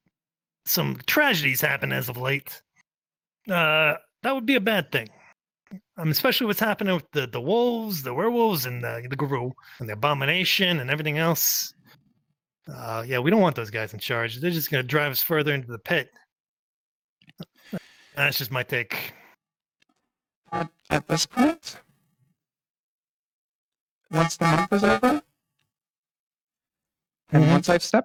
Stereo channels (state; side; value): identical; both; correlation 1.00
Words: some tragedies happen as of late, that would be a bad thing. especially what's happening with the wolves, the werewolves, and the guru, and the abomination, and everything else. Yeah, we don't want those guys in charge. They're just going to drive us further into the pit. That's just my take. At this point, once the month is over, and once I've